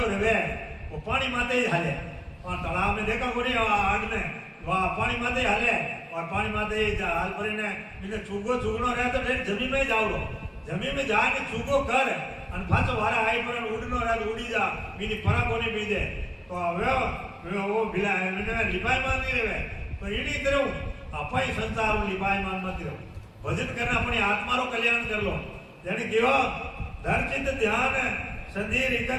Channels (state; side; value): identical; both; correlation 1.00